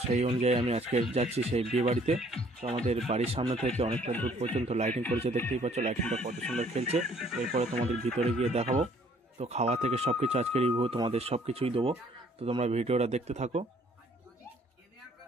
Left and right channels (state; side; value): normal; both; correlation 0.60